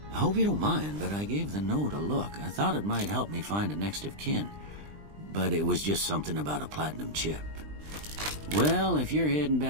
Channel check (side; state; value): left; late; 20 ms